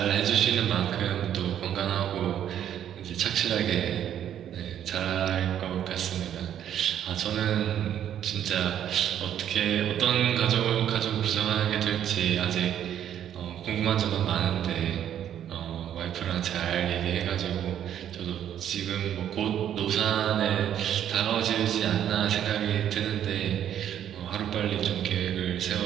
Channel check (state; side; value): quieter; left; 10.2 dB